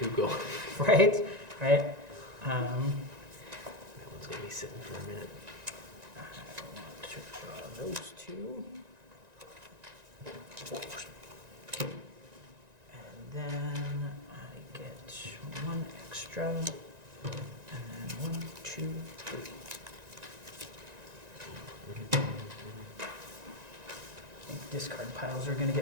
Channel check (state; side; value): late; left; 1.9 ms